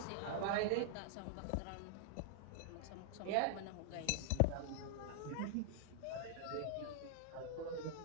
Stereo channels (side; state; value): both; different; correlation -0.01